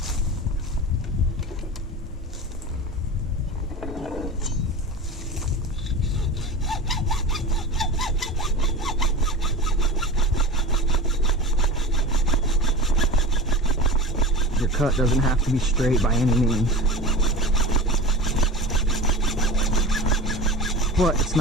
Your cut doesn't have to be straight by any means, but it's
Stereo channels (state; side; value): normal; both; correlation 0.32